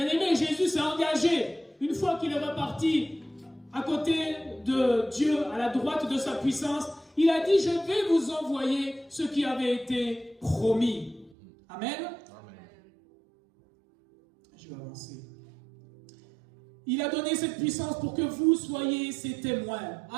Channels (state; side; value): drops out; left; at 11.4 s